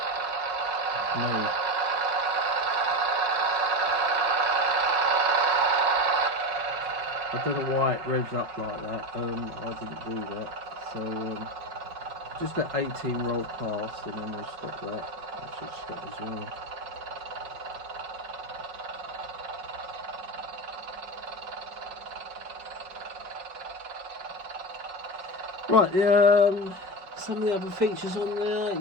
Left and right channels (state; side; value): late; left; 5.4 ms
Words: No. I don't know why it revs up like that. I didn't do that. So just let 18 roll past and then we'll stop that. I should stop as well. Right, some of the other features on there,